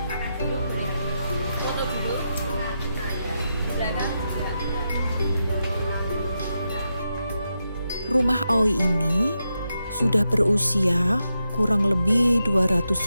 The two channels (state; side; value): inverted; both; correlation -0.86